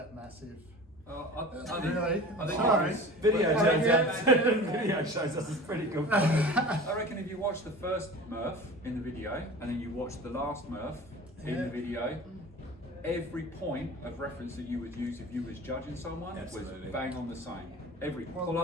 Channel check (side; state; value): both; normal; correlation 0.37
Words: massive. I think Sorry. Video shows us it's pretty good. I reckon if you watch the first MURPH in the video, and then you watch the last MURPH in the video, every point of reference that you would use if you was judging someone was bang on the same. Every